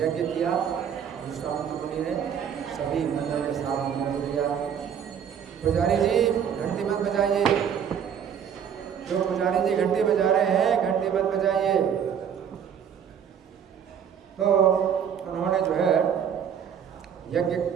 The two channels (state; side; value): quieter; left; 8.2 dB